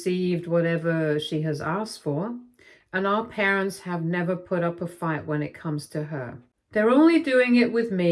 whatever she has asked for, and our parents have never put up a fight when it comes to her. They're only doing it with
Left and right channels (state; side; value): identical; both; correlation 1.00